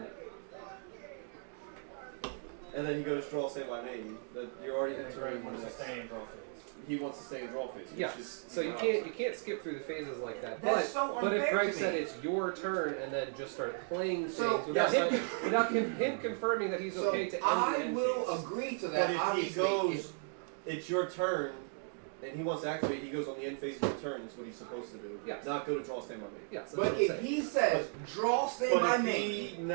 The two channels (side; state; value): left; silent; 54 dB below the other